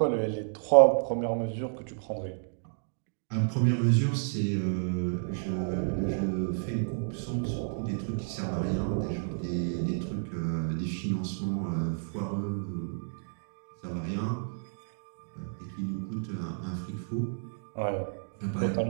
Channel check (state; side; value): silent; left; digital silence